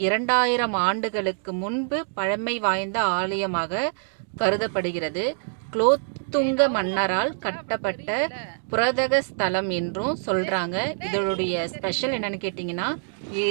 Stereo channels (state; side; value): silent; left; digital silence